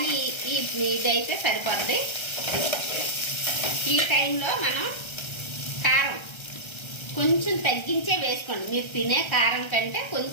ఇదైతే సరిపోద్ది. ఈ టైంలో మనం కారం కొంచెం తగ్గించే వేసుకోండి. మీరు తినే కారం కంటే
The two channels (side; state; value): right; late; 1.3 ms